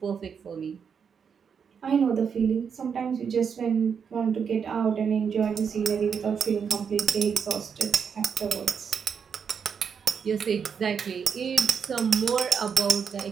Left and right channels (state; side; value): quieter; left; 6.8 dB